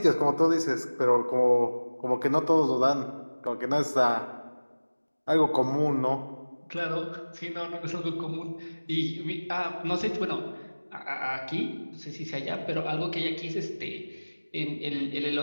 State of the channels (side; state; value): both; inverted; correlation -1.00